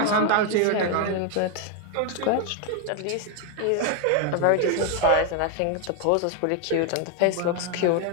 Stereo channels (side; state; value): both; different; correlation 0.01